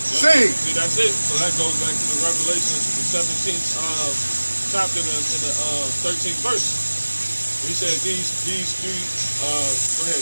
See, that's it. So that goes back to the Revelation, the 17th chapter in the 13th verse. He said these three, go ahead,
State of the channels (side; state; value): both; inverted; correlation -1.00